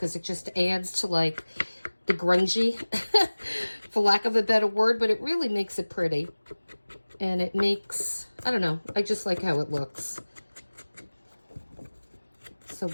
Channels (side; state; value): both; inverted; correlation -1.00